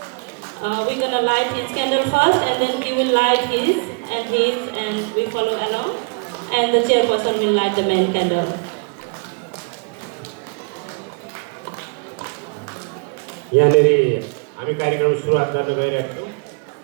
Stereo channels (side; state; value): left; quieter; 34.9 dB